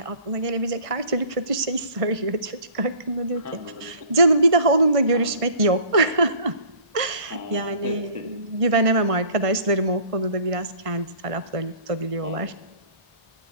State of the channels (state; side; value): late; left; 1.5 ms